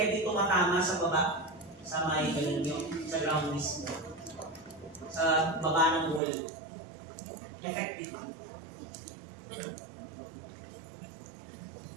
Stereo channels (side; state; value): left; drops out; at 6.2 s